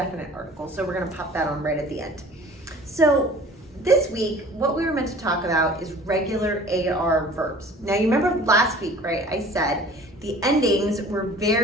articles. So we're gonna pop that on right at the end. So this week, what we were meant to talk about is regular AR verbs. Now you remember last week, right? I said the endings were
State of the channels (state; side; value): normal; both; correlation 0.47